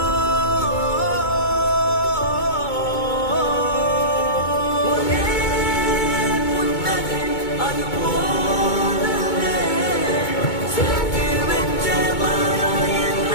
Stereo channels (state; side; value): late; right; 2.2 ms